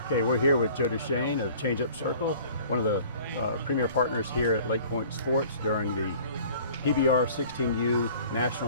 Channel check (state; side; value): inverted; both; correlation -0.49